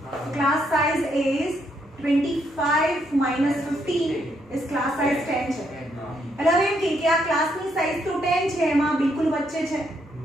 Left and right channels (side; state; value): both; normal; correlation 0.75